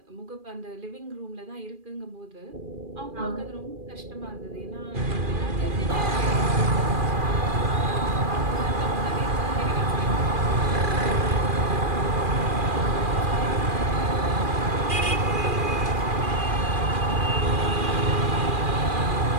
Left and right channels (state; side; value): late; left; 2.4 ms